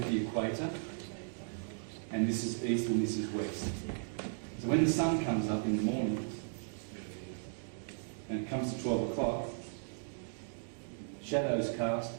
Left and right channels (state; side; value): silent; left; digital silence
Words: the equator. And this is east and this is west. So when the sun comes up in the morning, and it comes to 12 o'clock, shadows cast,